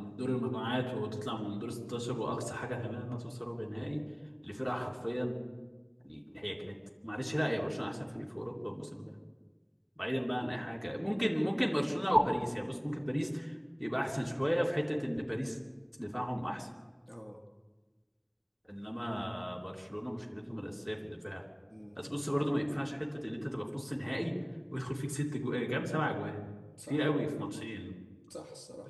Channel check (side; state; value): both; identical; correlation 1.00